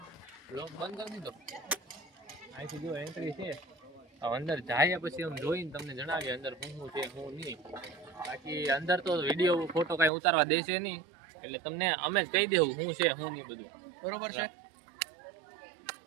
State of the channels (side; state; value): left; drops out; at 10.1 s